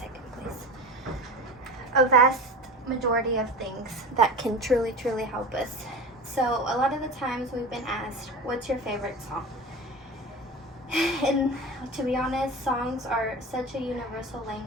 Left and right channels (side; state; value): both; normal; correlation 0.31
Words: please. A vast majority of things that can truly help us. So a lot of the times we've been asked, "What's your favorite song?" And to be honest, songs are such a universal